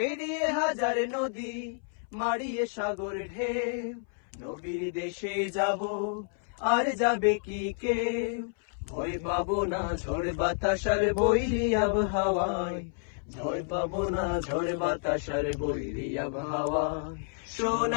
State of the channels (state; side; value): silent; right; 58 dB below the other